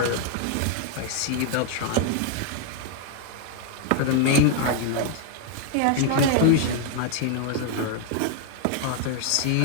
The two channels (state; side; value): different; both; correlation 0.00